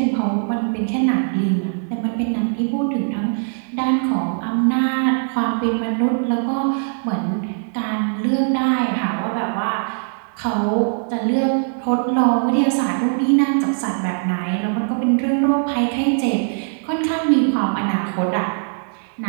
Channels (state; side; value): silent; left; digital silence